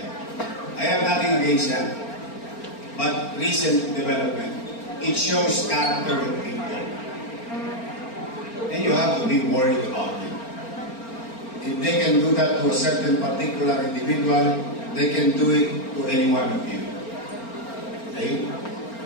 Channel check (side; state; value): right; late; 4.4 ms